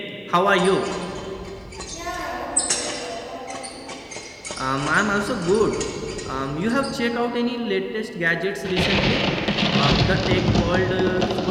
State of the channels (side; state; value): both; identical; correlation 1.00